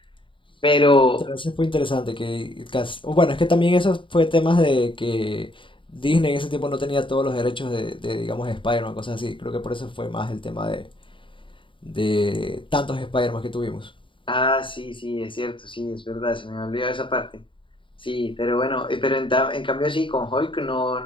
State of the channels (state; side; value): late; right; 0.25 ms